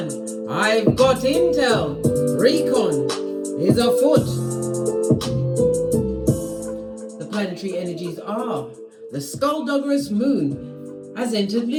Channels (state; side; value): identical; both; correlation 1.00